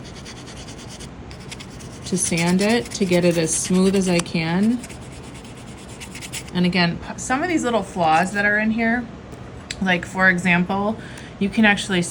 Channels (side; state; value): both; identical; correlation 1.00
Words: to sand it to get it as smooth as I can. And again, some of these little flaws that are in here, like for example, you can actually